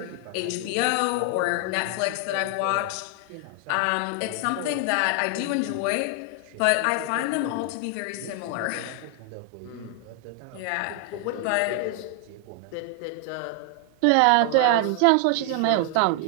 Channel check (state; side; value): different; both; correlation 0.00